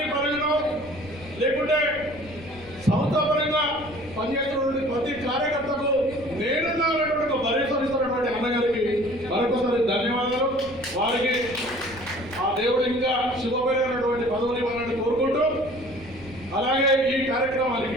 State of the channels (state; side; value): noise; left; rumble, 18 dB below the sound